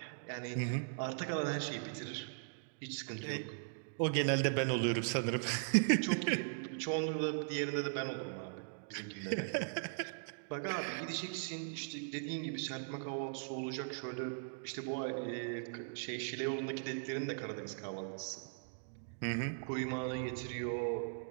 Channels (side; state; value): left; silent; digital silence